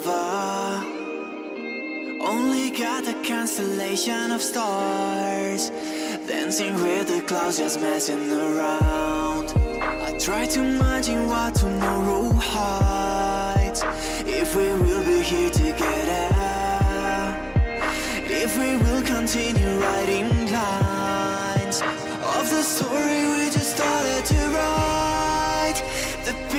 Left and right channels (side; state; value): both; identical; correlation 1.00